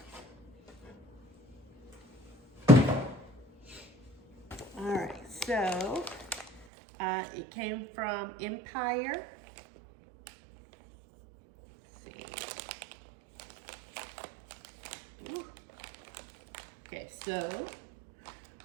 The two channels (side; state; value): left; drops out; at 6.7 s